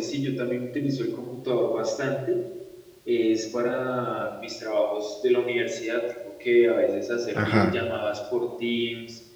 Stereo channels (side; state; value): both; identical; correlation 1.00